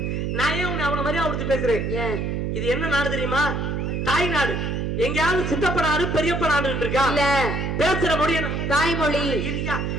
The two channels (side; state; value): right; noise; hum, 1 dB below the sound